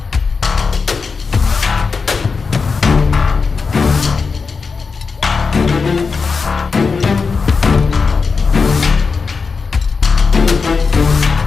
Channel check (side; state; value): right; quieter; 4.9 dB